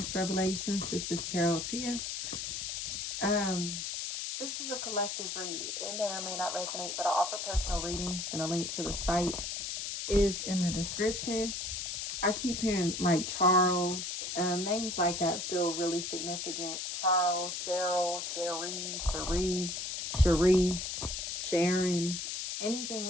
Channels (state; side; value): noise; left; hiss, 4 dB below the sound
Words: Revelations. This is Tarot Tia. Um, this is a collective read. It may or may not resonate, but I offer personal readings, and a link to the site is in the description. I keep hearing like Charles, names like that feel really significant. Charles, Cheryl, Cherise, Sharon, anything